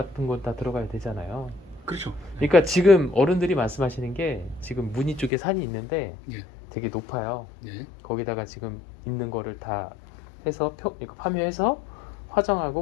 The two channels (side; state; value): right; drops out; at 5.3 s